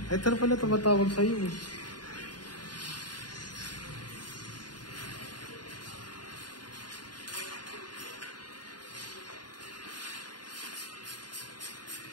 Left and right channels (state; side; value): late; right; 0.70 ms